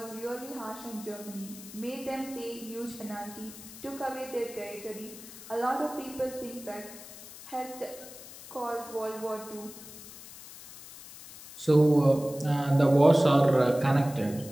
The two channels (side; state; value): left; noise; hiss, 16 dB below the sound